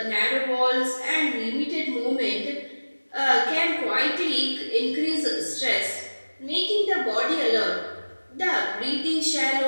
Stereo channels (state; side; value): inverted; both; correlation -1.00